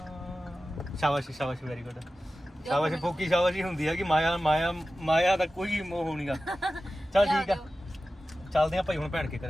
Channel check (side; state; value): both; normal; correlation 0.94